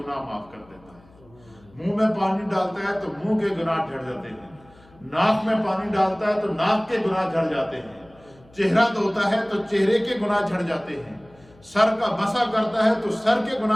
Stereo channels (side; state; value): left; noise; hum, 27 dB below the sound